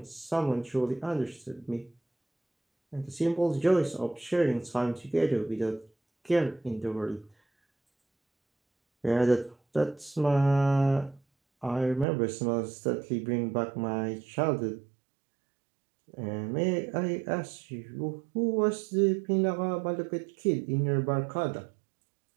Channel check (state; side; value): drops out; left; at 12.1 s